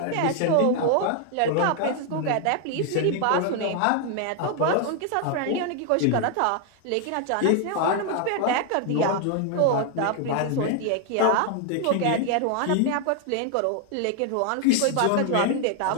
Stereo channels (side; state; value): both; different; correlation 0.00